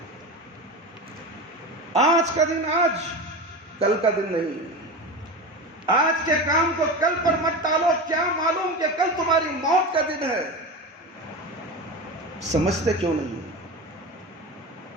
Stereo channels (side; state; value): both; normal; correlation 0.26